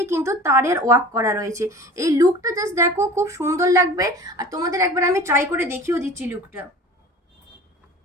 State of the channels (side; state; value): both; normal; correlation 0.40